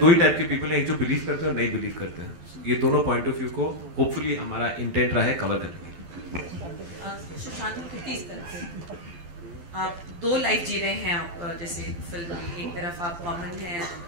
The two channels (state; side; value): late; left; 12 ms